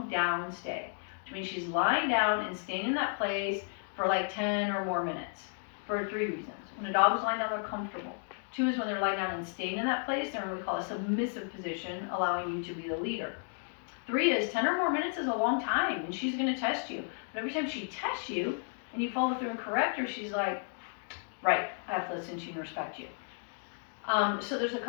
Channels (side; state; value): right; silent; 56 dB below the other